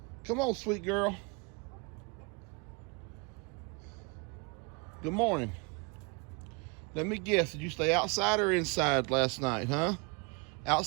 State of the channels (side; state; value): left; quieter; 30.8 dB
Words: Come on, sweet girl. Good morning. Let me guess. Did you stay outside or inside last night, huh?